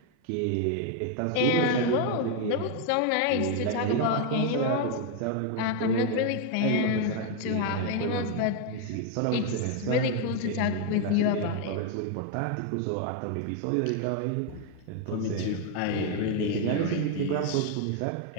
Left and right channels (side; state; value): both; different; correlation 0.01